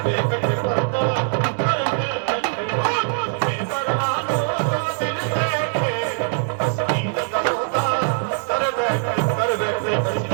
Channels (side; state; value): left; silent; 64 dB below the other